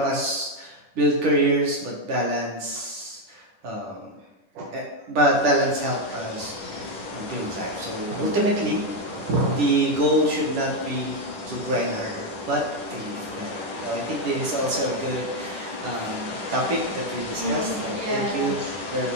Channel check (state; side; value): late; left; 10 ms